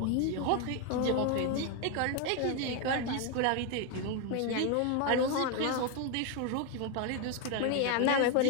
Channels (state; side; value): different; both; correlation 0.01